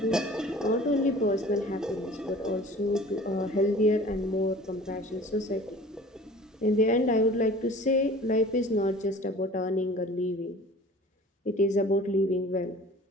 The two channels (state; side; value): normal; both; correlation 0.45